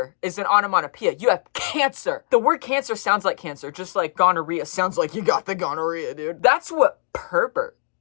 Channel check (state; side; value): silent; right; digital silence